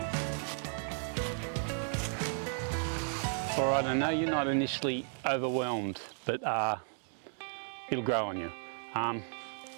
All right, I know you're not initially overwhelmed, but it'll grow on you.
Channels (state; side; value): silent; left; 55 dB below the other